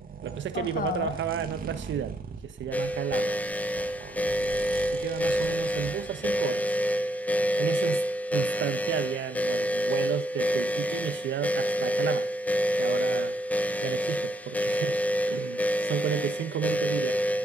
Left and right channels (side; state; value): both; normal; correlation 0.75